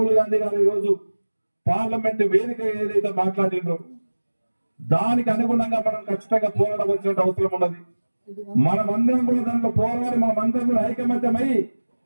గాంధీ గారు ఈ రోజు పార్లమెంట్ వేదిక ఏదైతే మాట్లాడిండ్రో దానికి అనుగుణంగా మనం ఖచ్చితంగా పోరాడవలసిన అవసరం ఉన్నది. మనమందరం కూడా దాంట్లో పోరాడి మనమందరం కూడా ఐకమత్యమై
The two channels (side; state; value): both; inverted; correlation -1.00